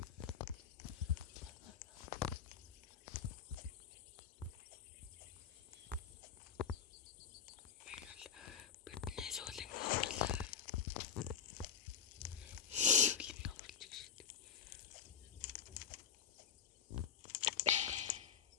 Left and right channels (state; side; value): quieter; right; 7.7 dB